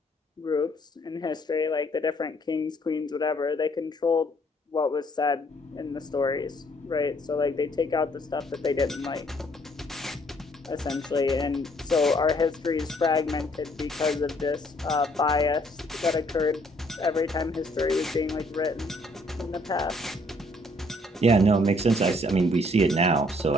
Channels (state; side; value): normal; both; correlation 0.65